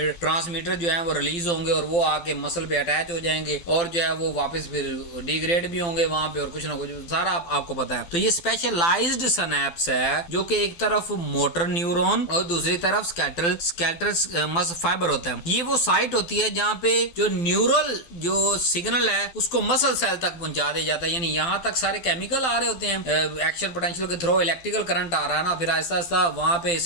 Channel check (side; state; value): right; late; 12 ms